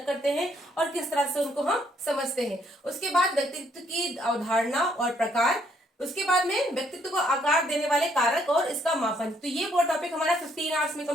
करते हैं और किस तरह से उनको हम समझते हैं। उसके बाद व्यक्तित्व की अवधारणा और प्रकार, उसके बाद में व्यक्तित्व को आकार देने वाले कारक और इसका मापन। तो ये वो टॉपिक हमारा 15 आवर्स में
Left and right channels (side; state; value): both; normal; correlation 0.69